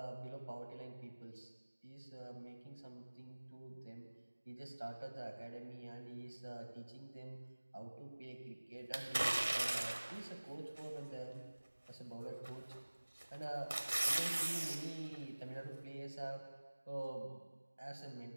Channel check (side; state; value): both; inverted; correlation -1.00